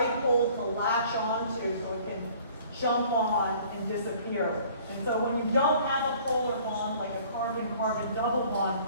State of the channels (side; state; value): both; inverted; correlation -0.53